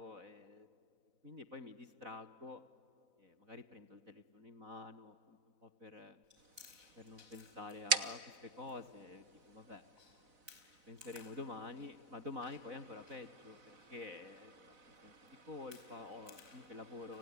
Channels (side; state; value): left; late; 4.0 ms